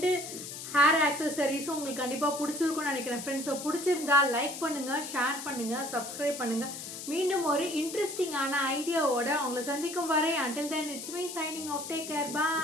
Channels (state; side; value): noise; left; hiss, 9 dB below the sound